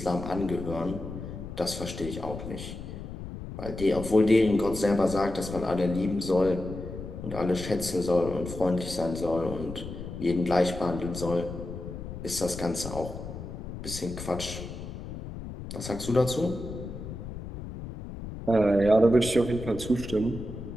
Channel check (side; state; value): left; noise; rumble, 9 dB below the sound